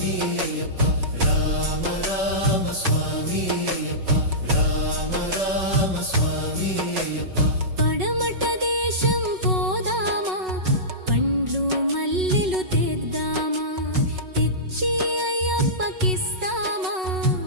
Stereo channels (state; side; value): late; left; 5.4 ms